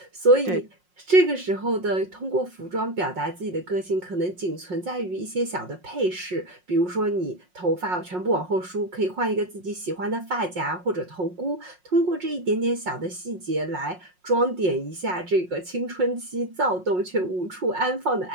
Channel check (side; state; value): left; late; 5.5 ms